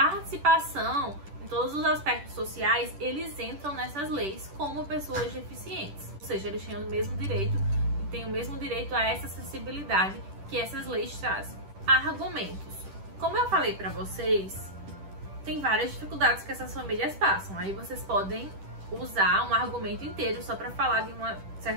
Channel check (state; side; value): late; left; 10 ms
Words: em todos os aspectos sociais, eles entram nessas leis como pessoas deficientes. Ou seja, eles têm o mesmo direito e têm o mesmo direito a essa acessibilidade que essas leis trazem. Argumentos. Como eu falei pra vocês, tem várias dificuldades que essas famílias passam. Aí vocês podem usar um argumento inteiro só pra falar de uma